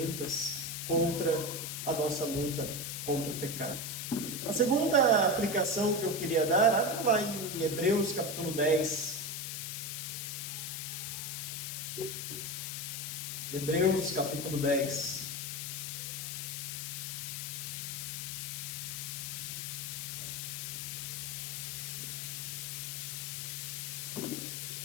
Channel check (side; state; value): left; noise; hiss, 4 dB below the sound